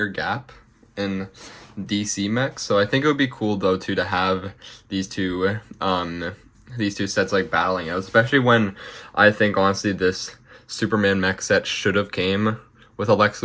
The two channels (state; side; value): identical; both; correlation 1.00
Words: gap in DC mechs, so I think it would be cool though too to have these two sets like battling out, especially when I think honestly this Superman mech set should have came with a Lex